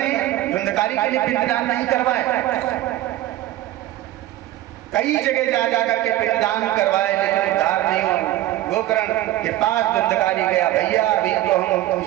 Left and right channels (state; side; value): quieter; left; 14.9 dB